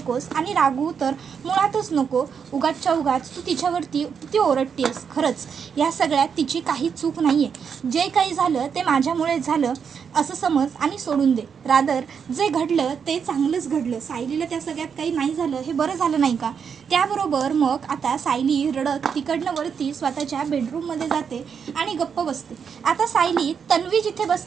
आणि रागवू तर मुळातच नको. उगाचच्या उगाच तू तिच्यावरती ती ओरडतेस. खरंच या सगळ्यात तिची काही चूक नाही आहे. जे काही झालं ते माझ्यामुळे झालं असं समज आणि सोडून दे. रादर जे घडलं ते चांगलंच घडलं. सायलीला त्या सगळ्यात काही नाही झालं हे बरं झालं नाही का. त्याबरोबर मग आता सायली रडत तिकडनं वरती स्वतःच्या बेडरूममध्ये जाते आणि गप्प बसते. आता सायली तन्वी जिथे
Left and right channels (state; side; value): quieter; left; 6.8 dB